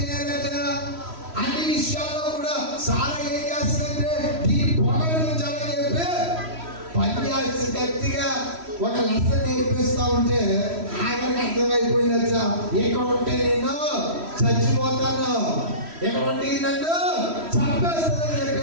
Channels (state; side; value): late; left; 3.1 ms